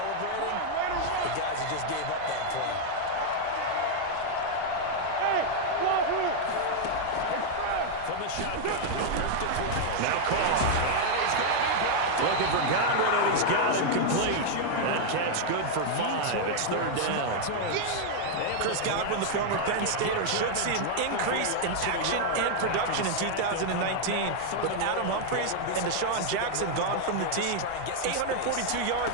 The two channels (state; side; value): different; both; correlation 0.00